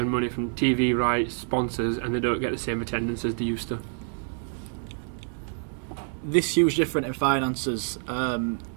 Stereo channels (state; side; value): silent; left; 55 dB below the other